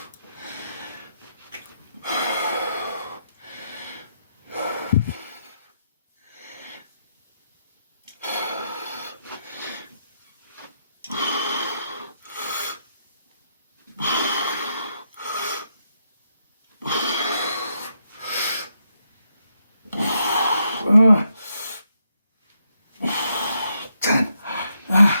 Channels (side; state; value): both; inverted; correlation -0.79